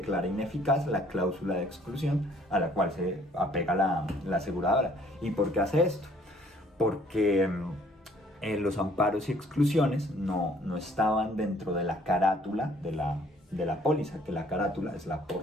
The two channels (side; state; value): both; normal; correlation 0.59